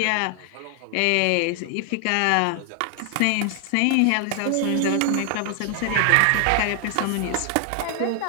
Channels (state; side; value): different; both; correlation 0.00